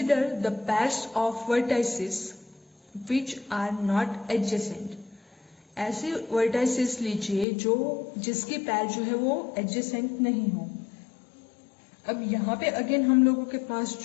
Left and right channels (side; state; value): right; drops out; at 7.5 s